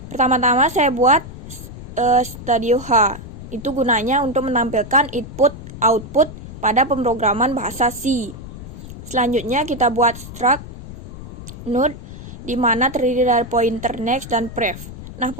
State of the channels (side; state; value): left; noise; rumble, 13 dB below the sound